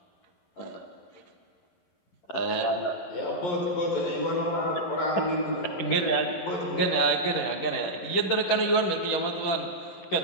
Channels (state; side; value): late; right; 11 ms